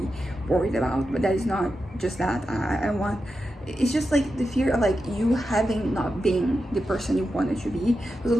worried about, but that is not just that. It's just like the fear of like you having not been the person you wanted to be. So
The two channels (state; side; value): normal; both; correlation 0.89